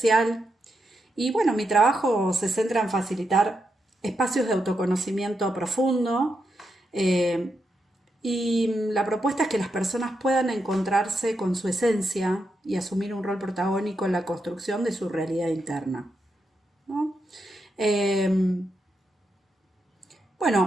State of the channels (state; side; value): normal; both; correlation 0.84